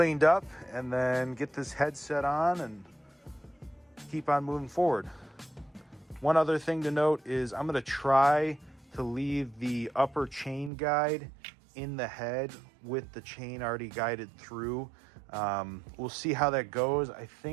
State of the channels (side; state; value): left; drops out; at 10.7 s